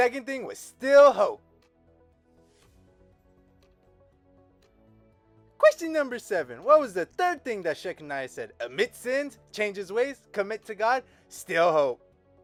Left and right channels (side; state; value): both; identical; correlation 1.00